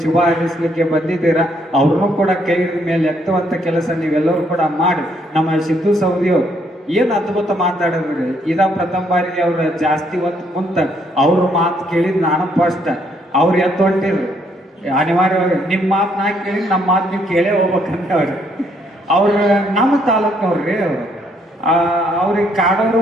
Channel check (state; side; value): normal; both; correlation 0.70